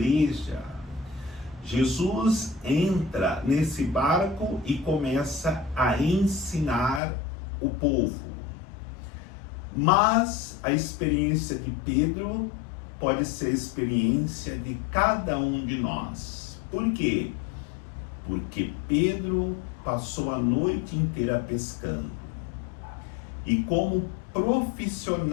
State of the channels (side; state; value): right; drops out; at 7.0 s